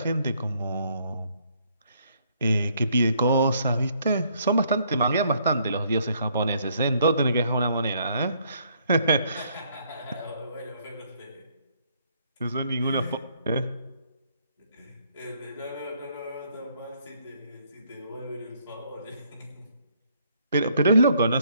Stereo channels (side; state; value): both; inverted; correlation -0.67